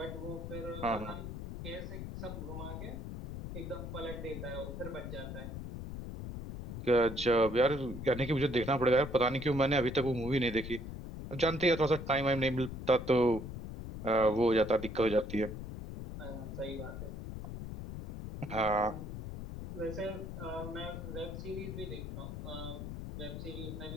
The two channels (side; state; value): left; noise; rumble, 8 dB below the sound